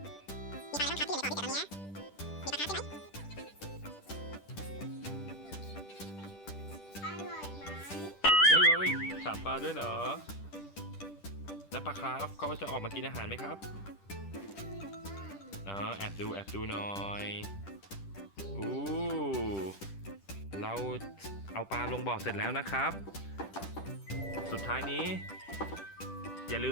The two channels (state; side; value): late; right; 10 ms